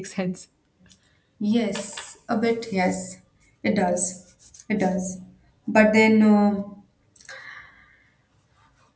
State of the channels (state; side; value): identical; both; correlation 1.00